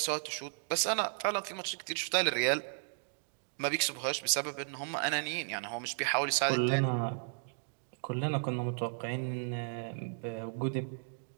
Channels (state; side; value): silent; left; digital silence